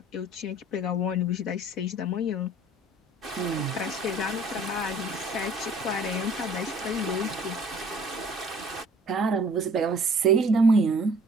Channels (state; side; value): normal; both; correlation 0.53